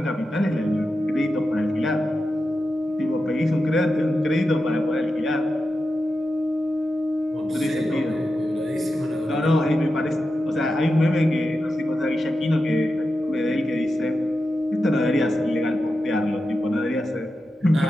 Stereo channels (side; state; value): both; normal; correlation 0.90